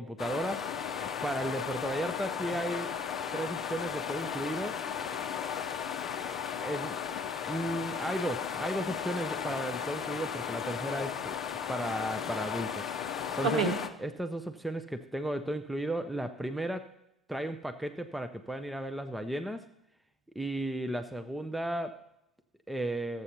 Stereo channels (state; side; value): normal; both; correlation 0.63